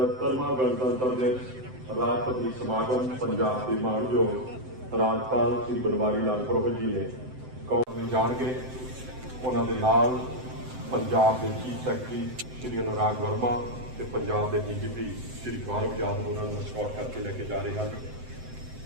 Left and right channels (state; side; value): late; left; 7.8 ms